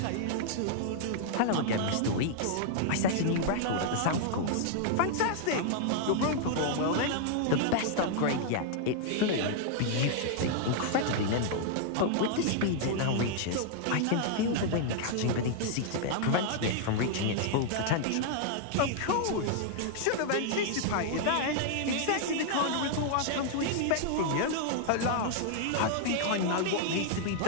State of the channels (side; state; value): both; different; correlation -0.01